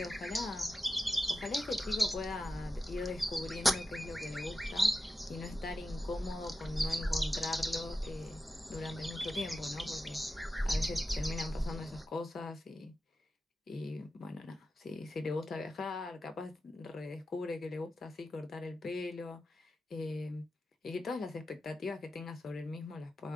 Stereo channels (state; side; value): normal; both; correlation 0.91